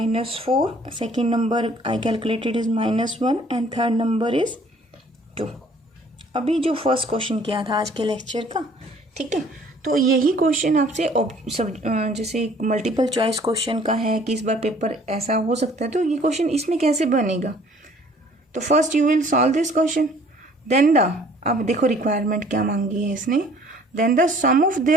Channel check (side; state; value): both; normal; correlation 0.56